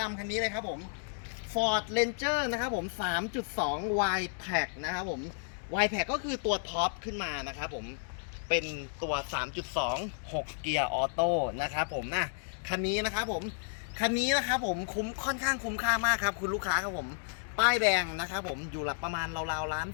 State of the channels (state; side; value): silent; right; digital silence